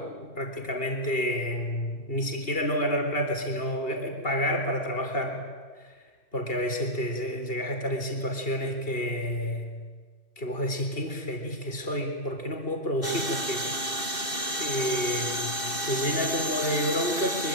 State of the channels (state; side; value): late; right; 2.6 ms